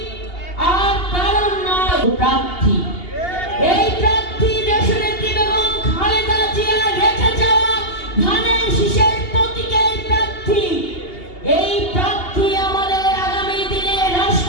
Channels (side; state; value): right; late; 2.8 ms